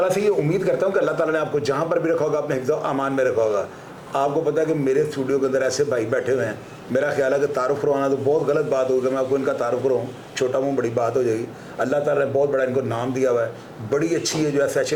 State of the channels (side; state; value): both; identical; correlation 1.00